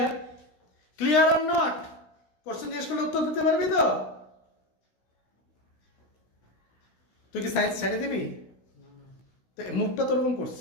Clear or not? Question জিজ্ঞেস করলে উত্তর দিতে পারবি তো? তুই কি science ছেড়ে দিবি? মুখটা তোর মন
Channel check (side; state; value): right; late; 16 ms